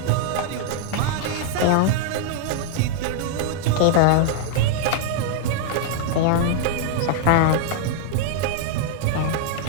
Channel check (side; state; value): both; different; correlation -0.01